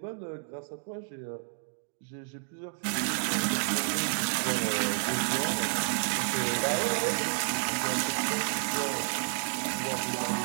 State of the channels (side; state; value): left; silent; digital silence